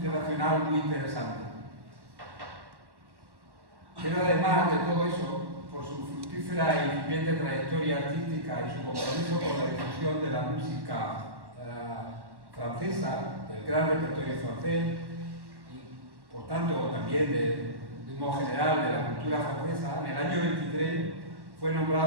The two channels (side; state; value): left; late; 1.1 ms